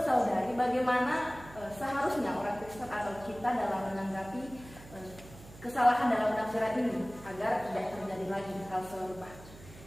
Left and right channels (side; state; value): right; noise; hum, 18 dB below the sound